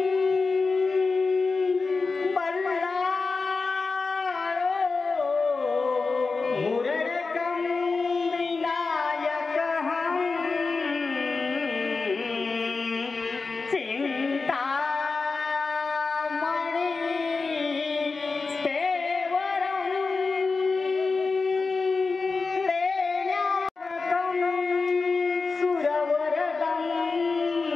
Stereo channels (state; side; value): quieter; right; 4.2 dB